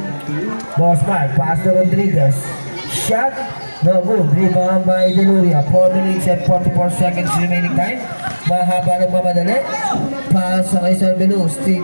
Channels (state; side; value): inverted; both; correlation -1.00